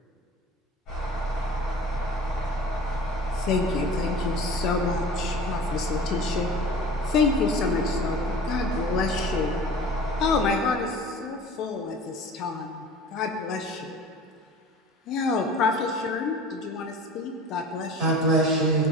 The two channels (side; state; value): both; normal; correlation 0.41